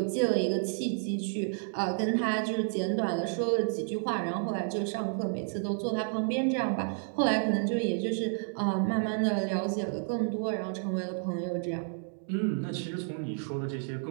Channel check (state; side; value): silent; left; 57 dB below the other